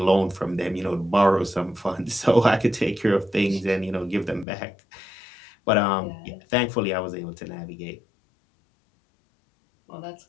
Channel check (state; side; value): drops out; right; at 4.5 s